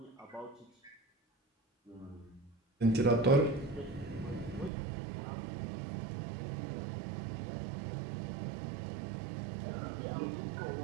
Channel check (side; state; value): left; drops out; at 4.7 s